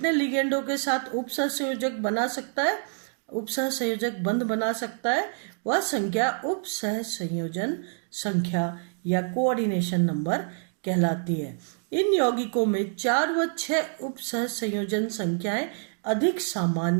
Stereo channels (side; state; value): left; silent; 60 dB below the other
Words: लिगेंडों के साथ उपसहसंयोजक बना सकता है, उपसहसंयोजक बंध बना सकता है, वह संख्या उपसहसंयोजन संख्या या कोऑर्डिनेशन नंबर कहलाती है। इन यौगिकों में 4 व 6 उपसहसंयोजन संख्याएं अधिक